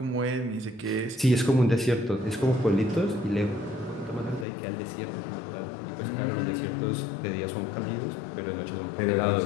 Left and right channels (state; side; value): drops out; right; at 4.5 s